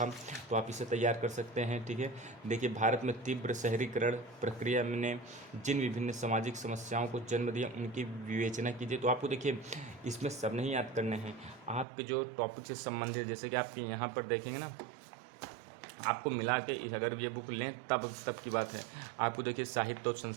तो आप इसे तैयार कर सकते हैं, ठीक है। देखिए भारत में तीव्र शहरीकरण प्रक्रिया ने जिन विभिन्न सामाजिक समस्याओं को जन्म दिया उनकी विवेचना कीजिए। तो आपको देखिए इसमें सब नहीं याद करने हैं, आपके जो टॉपिक से संबंधित, जैसे कि आपके यहाँ पर देखेंगे ना, आपको मिला के अगर ये बुक लें तब की बात है। आपको देखिए साहित्य और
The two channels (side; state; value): left; drops out; at 11.9 s